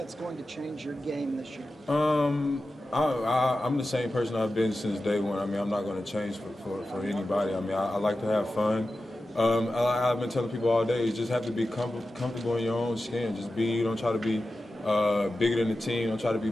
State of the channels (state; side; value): normal; both; correlation 0.93